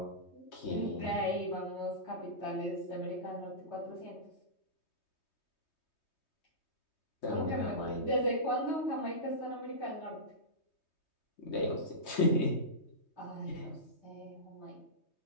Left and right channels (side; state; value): right; late; 3.2 ms